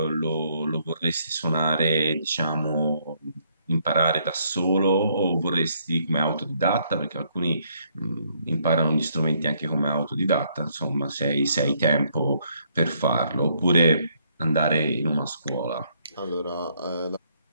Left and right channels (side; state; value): both; inverted; correlation -0.70